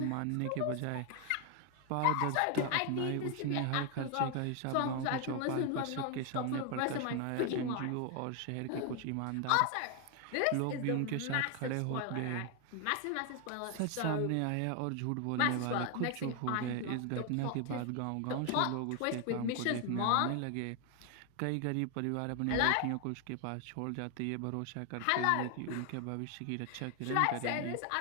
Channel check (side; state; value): both; different; correlation 0.01